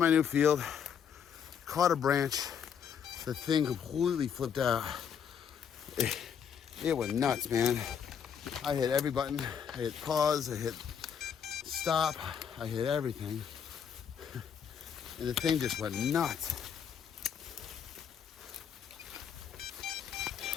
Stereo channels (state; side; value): quieter; right; 7.8 dB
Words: new field, caught a branch. The thing completely flipped out. It went nuts, man. I hit every button. I hit pause, I hit stop, I hit everything. And the thing just went nuts.